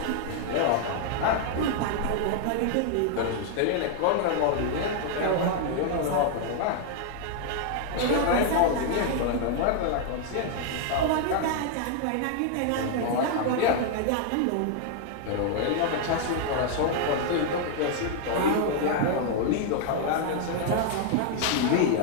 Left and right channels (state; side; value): different; both; correlation 0.00